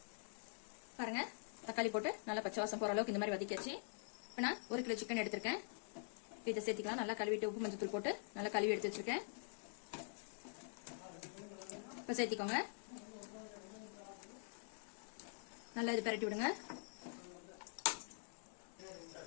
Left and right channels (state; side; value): silent; right; digital silence